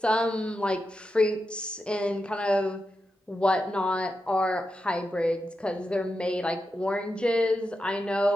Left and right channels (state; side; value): normal; both; correlation 0.89